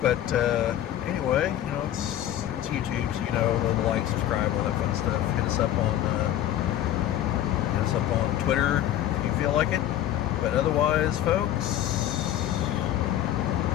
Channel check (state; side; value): quieter; right; 12.1 dB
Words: anyway, you know, it's YouTube, so, you know, like, subscribe, all that fun stuff. Hit us up on Twitter if you feel like it. But otherwise, folks,